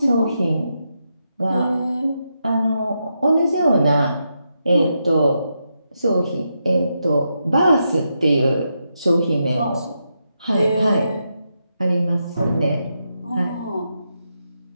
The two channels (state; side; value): inverted; both; correlation -0.84